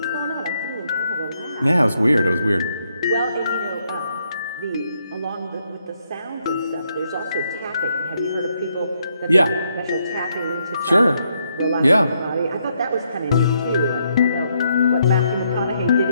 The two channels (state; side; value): inverted; both; correlation -0.76